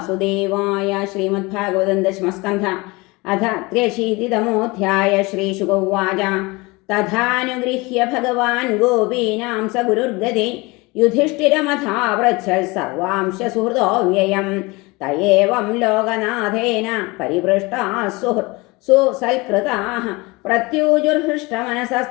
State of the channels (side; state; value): right; quieter; 24.4 dB